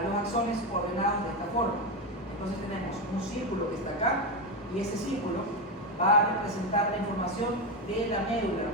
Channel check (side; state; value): both; normal; correlation 0.12